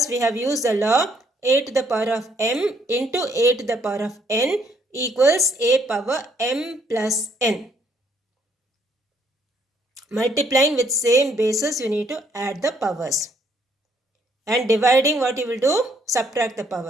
we have used the law a to the power of m into a to the power of n equals a power m plus n. Multiplying with same basis, you need to add the powers. And dividing, what you will do? Subtract the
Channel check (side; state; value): both; normal; correlation 0.68